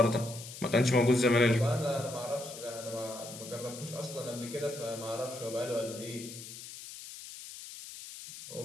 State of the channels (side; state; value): left; noise; hiss, 12 dB below the sound